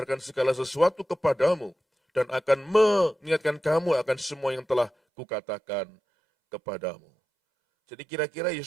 segala sesuatu kepadamu dan akan mengingatkan kamu akan semua yang telah kukatakan kepadamu. Jadi kira-kira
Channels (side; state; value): left; drops out; at 4.9 s